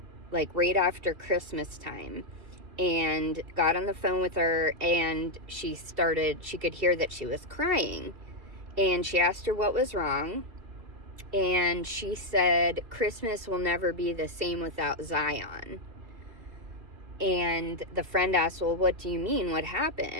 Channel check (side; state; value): left; late; 2.6 ms